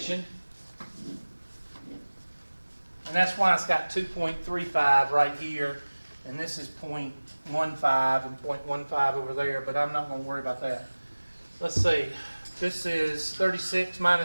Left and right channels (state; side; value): inverted; both; correlation -1.00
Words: And that's why it's got 2.35 right here. And this is 0.15 and 0.15 over there, but I'm not going to worry about that. Let's see. This is 36